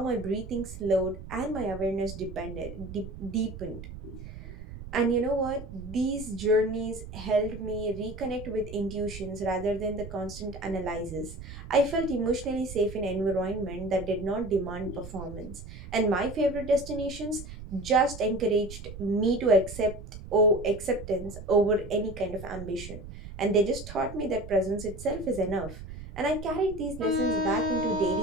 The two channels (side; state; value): right; noise; rumble, 12 dB below the sound